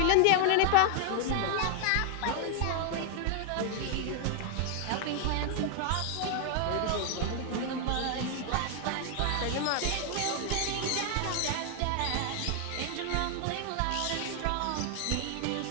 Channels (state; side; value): different; both; correlation 0.00